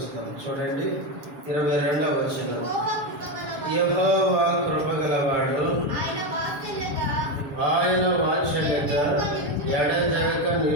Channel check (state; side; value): late; left; 7.2 ms